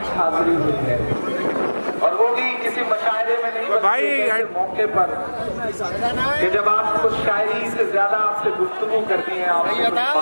हाजिरी हुई है और वो भी किसी मशायरे में नहीं भाई मौके पर कि जब आप कुछ शायरी से ज्यादा आपसे गुफ्तगू करती हैं।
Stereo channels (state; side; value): inverted; both; correlation -1.00